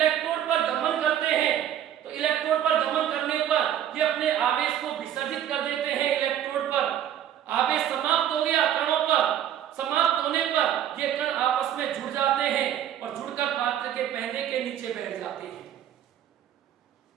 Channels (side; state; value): left; quieter; 10.5 dB